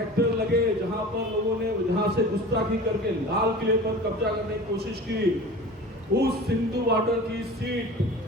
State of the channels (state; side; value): normal; both; correlation 0.37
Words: लगे, जहां पर लोगों ने जहां से गुस्ताखी करके लाल किले पर कब्जा करने की कोशिश की, उस सिंधु बॉर्डर की सीट